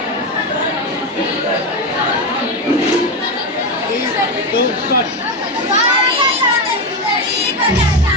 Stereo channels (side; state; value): both; normal; correlation 0.13